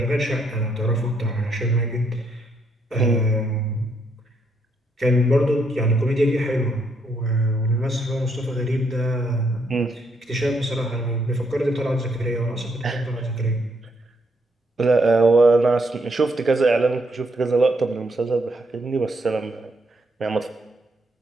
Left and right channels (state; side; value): normal; both; correlation 0.75